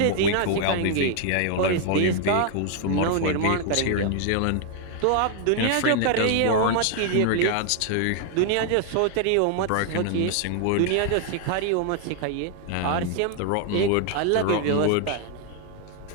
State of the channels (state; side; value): different; both; correlation 0.00